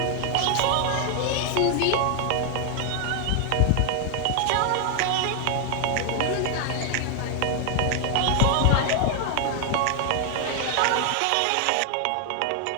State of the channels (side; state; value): both; different; correlation 0.00